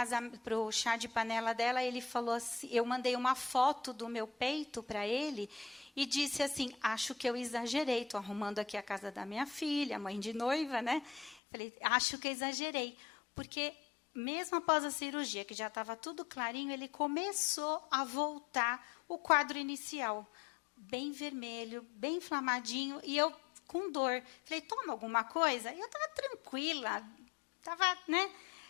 para o chá de panela dela, ele falou assim, eu mandei uma foto do meu peito para ele e disse assim, acho que eu exagerei, estou arrumando aqui a casa da minha filha, mãe de noiva, né? Falei, acho que eu exagerei, porque mesmo após a cirurgia, que já estava tudo clarinho, ele começou a voltar o quadro inicial. Bem vermelho, bem inflamadinho, e eu com dor. Falei, toma alguma coisa? E eu estava tranquila, estava, né?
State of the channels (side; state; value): right; drops out; at 11.4 s